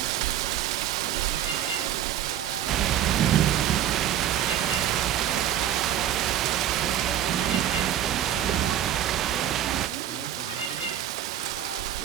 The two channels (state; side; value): quieter; left; 10.7 dB